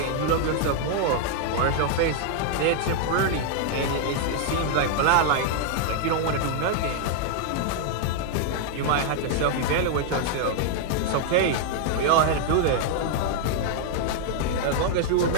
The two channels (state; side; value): different; both; correlation 0.00